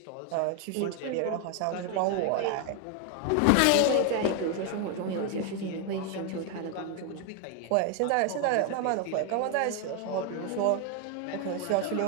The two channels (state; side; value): different; both; correlation 0.01